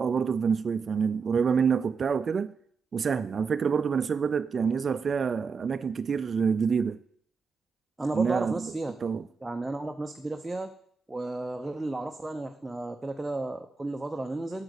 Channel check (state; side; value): quieter; left; 5.2 dB